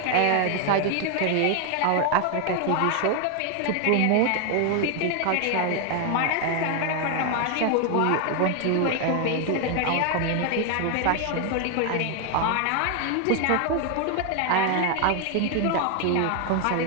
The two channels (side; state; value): both; different; correlation 0.01